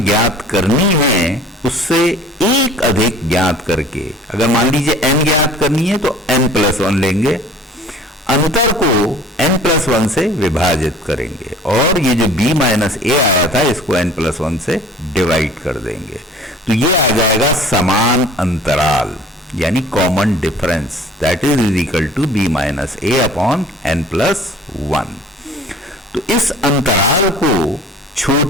ज्ञात करनी है उससे एक अधिक ज्ञात करके, अगर मान लीजिए n ज्ञात करनी है तो n+1 लेंगे, अंतर को n+1 से विभाजित करेंगे और ये जो b माइनस a आया था इसको n+1 से डिवाइड कर देंगे। तो ये आ जाएगा समान अंतराल, यानी common difference, that is equal to b minus a upon n+1। तो इस अंतराल को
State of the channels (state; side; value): normal; both; correlation 0.48